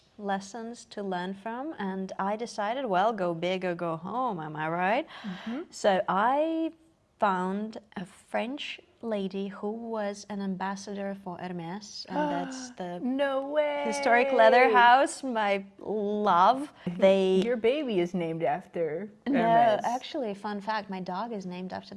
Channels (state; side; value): identical; both; correlation 1.00